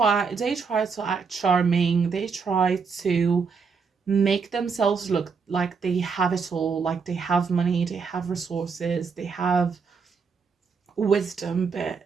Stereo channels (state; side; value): quieter; left; 5.5 dB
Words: to act charming. They try to make themselves look like they have it all, like they have money, they have resources, they have wisdom,